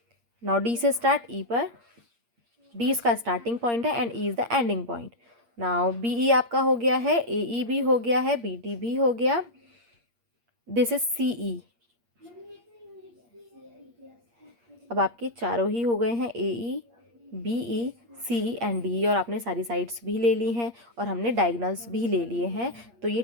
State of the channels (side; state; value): left; late; 8.6 ms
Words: Now D से स्टार्ट, ई पर, डी इसका स्टार्टिंग पॉइंट है and E is the ending point. Now B E आपका हो गया है, ए ई भी हो गया है, बी डी भी हो गया, दिस इज सी ई। अब आपके चारों ही हो गए हैं, A E, B E, C E and D, और आपने सारी साइड्स भी ले ली हैं और हमने डायगोनल्स भी ले लिए हैं। तो ये